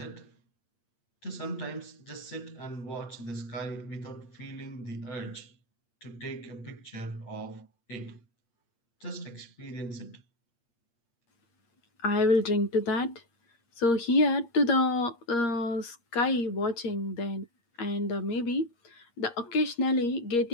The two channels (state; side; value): late; right; 8.6 ms